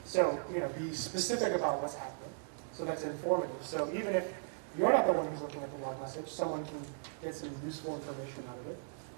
be specific about what's happening. So that's informative. So even if you're not the one who's looking at the log message, someone can get some useful information out of it.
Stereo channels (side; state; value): left; silent; digital silence